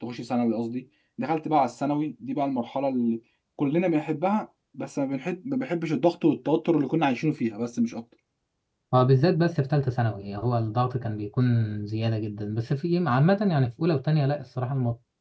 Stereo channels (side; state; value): both; identical; correlation 1.00